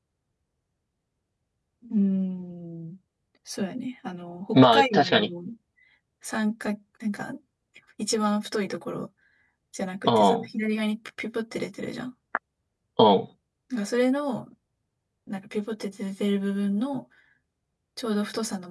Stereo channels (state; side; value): identical; both; correlation 1.00